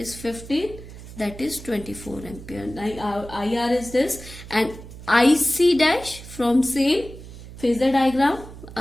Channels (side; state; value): right; noise; hum, 15 dB below the sound